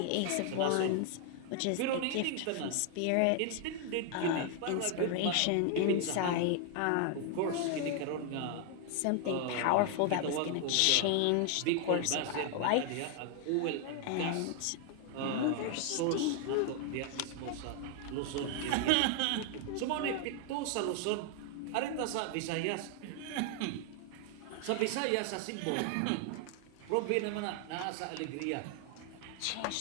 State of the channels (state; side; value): different; both; correlation 0.00